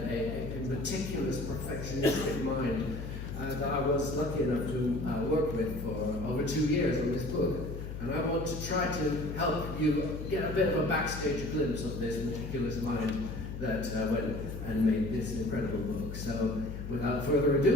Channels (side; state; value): left; noise; hum, 7 dB below the sound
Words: a meticulous, perfectionistic mind that I was lucky enough to work with for over 2 years on this book. And I want to try to help you get a bit of a backstage glimpse of this meticulous mind that went and made this incredible book. So, without further